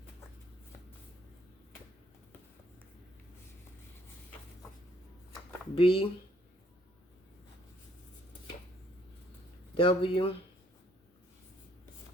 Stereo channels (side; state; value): both; normal; correlation 0.66